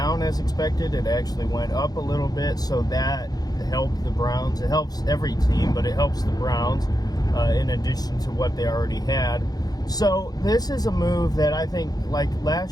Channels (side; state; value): right; late; 0.19 ms